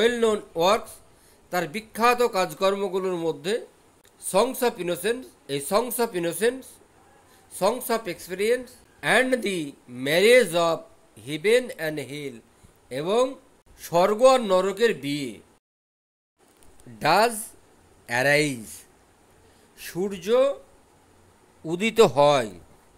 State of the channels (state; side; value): identical; both; correlation 1.00